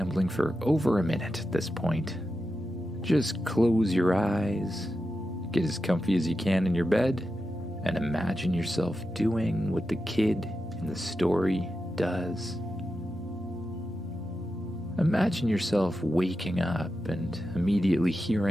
for over a minute at this point. Just close your eyes, get as comfy as you can in your bed, and imagine yourself doing what the kid in the story does. Imagine yourself waking up and immediately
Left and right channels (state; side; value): normal; both; correlation 0.90